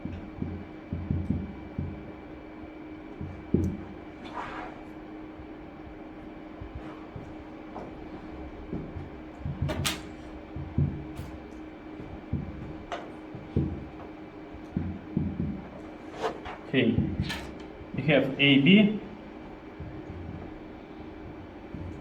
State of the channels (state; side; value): identical; both; correlation 1.00